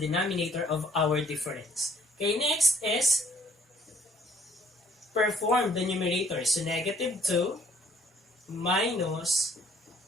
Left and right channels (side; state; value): both; normal; correlation 0.62